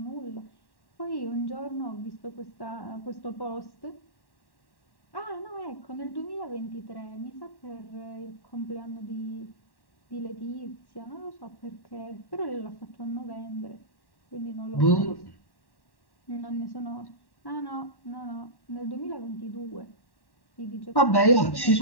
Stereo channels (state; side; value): late; right; 1.1 ms